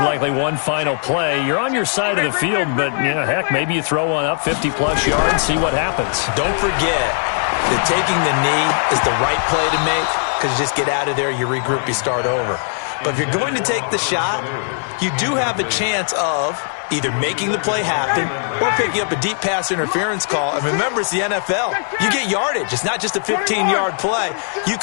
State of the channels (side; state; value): right; silent; digital silence